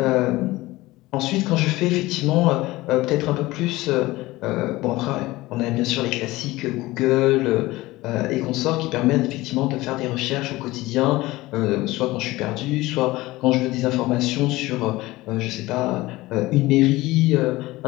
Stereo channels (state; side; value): quieter; right; 19.1 dB